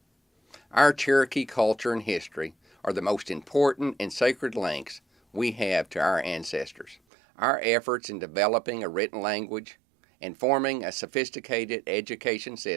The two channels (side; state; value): left; drops out; at 7.0 s